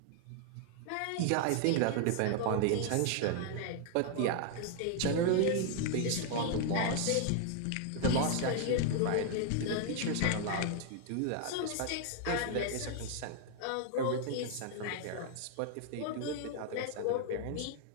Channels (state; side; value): different; both; correlation 0.00